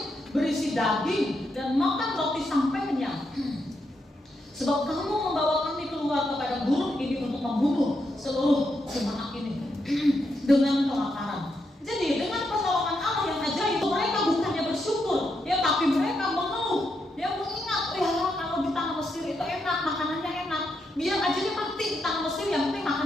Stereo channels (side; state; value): both; normal; correlation 0.81